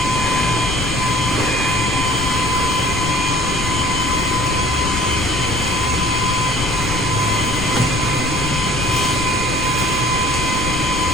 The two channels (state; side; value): noise; left; rumble, 4 dB below the sound